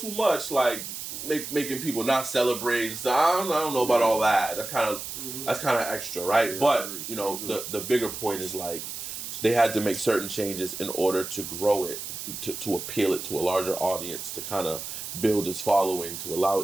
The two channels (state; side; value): noise; right; hiss, 8 dB below the sound